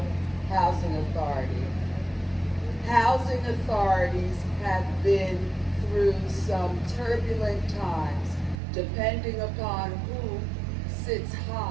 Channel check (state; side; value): drops out; left; at 8.6 s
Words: Housing Authority. Housing authorities have been through some turbulent times, depending upon who sits